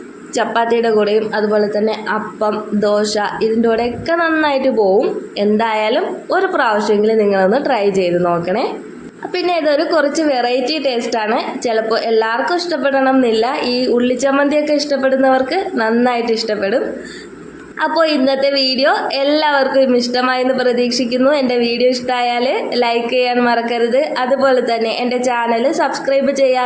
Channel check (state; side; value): identical; both; correlation 1.00